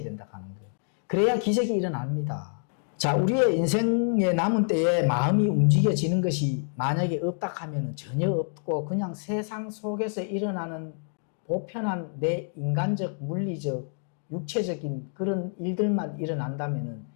된다 하는 거예요. 그래야 기적이 일어납니다. 자, 우리의 인생의 남은 때에 마음이 움직여지는 것이 만약에 없다 하면 전혀 없고 그냥 세상 속에서 일어나는 보편한 내 인간적, 물리적, 육체적인 그런 일들만 일어난다면은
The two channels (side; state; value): right; silent; 59 dB below the other